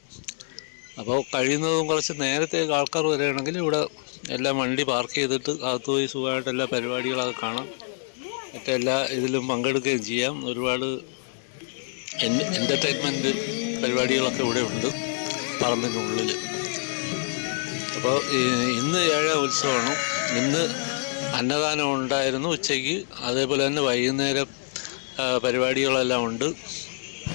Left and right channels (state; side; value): silent; right; digital silence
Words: അപ്പോൾ കഴിയുന്നതും കുറച്ച് നേരത്തെ ആൾക്കാർ വരികയാണെങ്കിൽ ഇവിടെ എല്ലാം വണ്ടി പാർക്ക് ചെയ്തിട്ട് അകത്ത് പോയി സുഖമായിട്ട് എല്ലാ പരിപാടികളൊക്കെ കാണാം. മറ്റെല്ലാ ഇതിലും പങ്കെടുക്കുകയും ചെയ്യാം. ഒരുപാട് എൻ്റർടൈൻമെൻറ്റ് പരിപാടികളൊക്കെ ഇവിടെ ഉണ്ട് പറമ്പിനുള്ളിൽ. അപ്പോൾ ഇന്ന് 7ാം ഉത്സവമാണ്. ഇന്ന് അന്നദാനം ഉണ്ടായിരുന്നു ഉച്ചയ്ക്ക്. അതേപോലെ തന്നെ വൈകുന്നേരം പരിപാടികളെല്ലാം ഉണ്ട്.